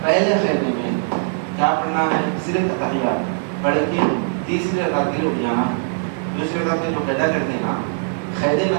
پہلے خیمے میں کیا پڑھنا ہے، صرف اتحیات پڑھ کے تیسری رکعت کے لیے اٹھ جانا، دوسری رکعت کے لیے قیدا کر دینا، قیدے میں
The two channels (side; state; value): left; silent; 63 dB below the other